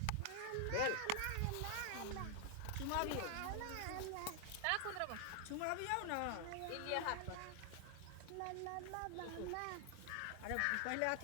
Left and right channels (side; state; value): both; different; correlation 0.00